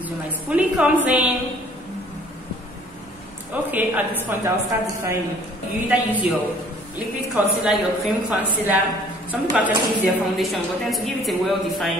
is where my spoolie comes in. Okay, at this point I'll start defining. You either use your liquid concealer, your cream concealer. Some people actually use their foundation, but then to give it a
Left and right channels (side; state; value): both; normal; correlation 0.55